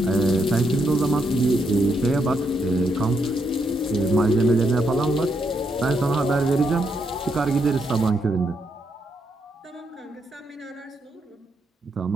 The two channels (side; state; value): both; normal; correlation 0.79